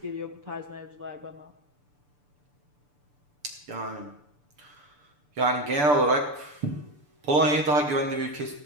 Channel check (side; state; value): left; late; 6.9 ms